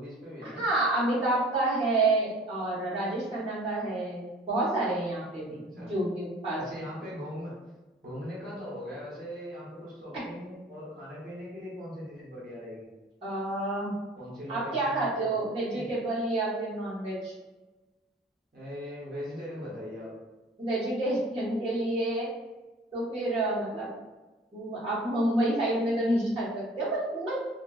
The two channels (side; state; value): both; normal; correlation 0.47